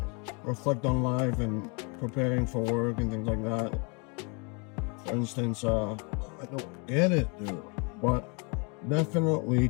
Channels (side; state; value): right; quieter; 33.2 dB